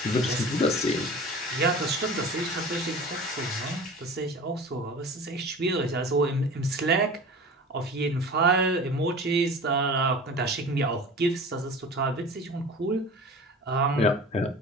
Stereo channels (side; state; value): both; normal; correlation 0.38